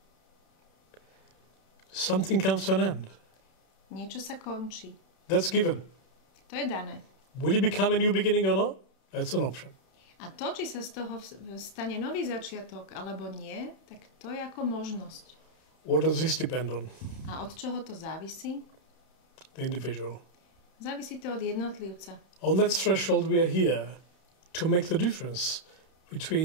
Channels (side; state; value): right; late; 31 ms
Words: Something comes to an end. Niečo sa končí. That's given. To je dané. Will it become a new beginning or not? That's an option. A to, či sa z toho stane nový začiatok alebo nie, tak to je ako možnosť. What does this depend on? A od čoho to závisí? The individual. Závisí to od jednotlivca. On that threshold we are here to make the difference